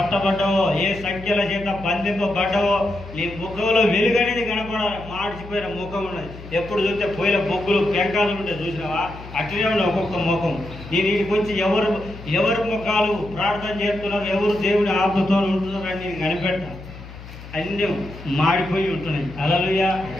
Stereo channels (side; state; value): left; noise; hum, 15 dB below the sound